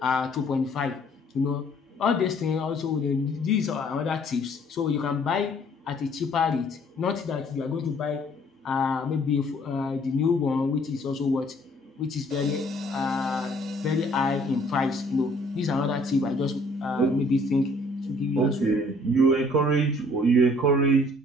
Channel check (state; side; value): normal; both; correlation 0.59